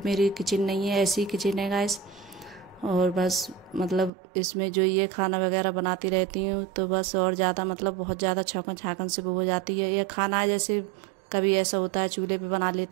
मेरी किचन नहीं है, ऐसी किचन है गाइस। और बस मतलब इसमें जो ये खाना वगैरह बनाती रहती हूँ तो बस, और ज़्यादा मतलब बहुत ज़्यादा छौंकन छाकन से वो हो जाती है। ये खाना है जैसे कभी ऐसा होता है चूल्हे पे बना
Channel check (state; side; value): drops out; left; at 4.1 s